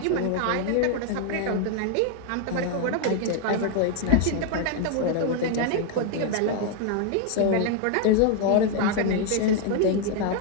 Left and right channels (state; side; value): different; both; correlation 0.00